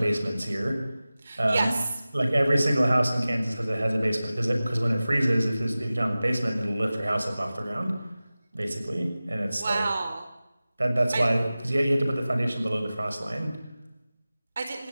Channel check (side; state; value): both; inverted; correlation -0.97